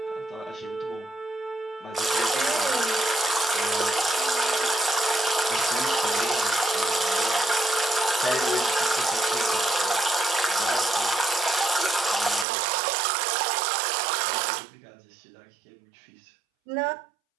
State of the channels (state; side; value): drops out; left; at 12.5 s